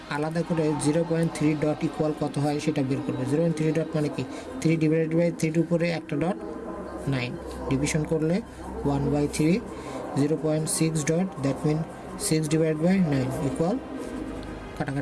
আলাদা করে 0.3 ডট ইকুয়াল কত হয় সেটা বের করব। 0.3 ডট মানে কি 3 ডিভাইডেড বাই 3 এর উপরে একটা ডট 9 ডিভিশন করলে 1/3 0.6 dot that mean 6 divided by 9 equal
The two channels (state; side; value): identical; both; correlation 1.00